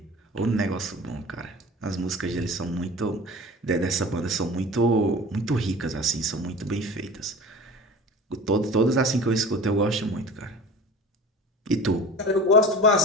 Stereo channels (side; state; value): both; normal; correlation 0.38